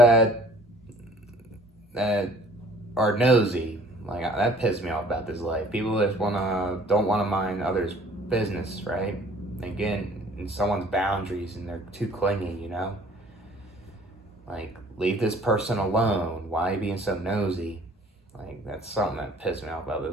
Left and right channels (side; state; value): both; normal; correlation 0.54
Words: are nosy, like, that pisses me off about this life. People that don't wanna mind others' business, right? Again, in someone's boundaries, and they're too clingy. Like, leave this person alone. Why are you being so nosy? Like, that's something that pissed me off about